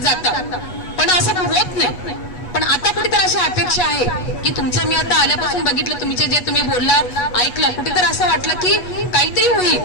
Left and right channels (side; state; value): right; late; 8.2 ms